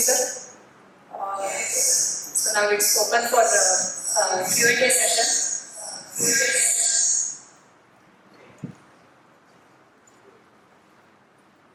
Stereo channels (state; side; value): identical; both; correlation 1.00